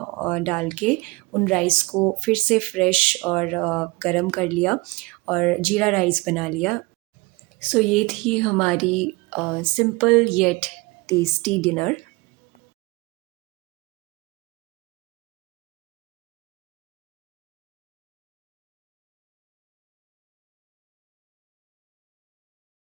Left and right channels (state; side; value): quieter; left; 23.8 dB